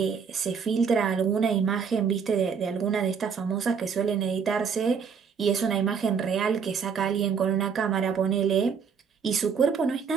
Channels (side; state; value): left; quieter; 6.3 dB